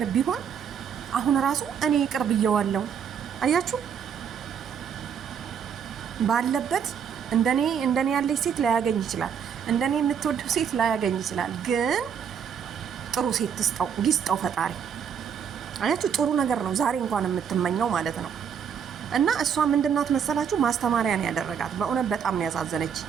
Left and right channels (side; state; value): left; quieter; 7.6 dB